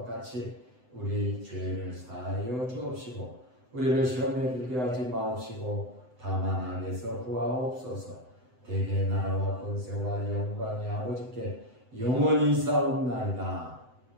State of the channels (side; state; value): left; late; 7.9 ms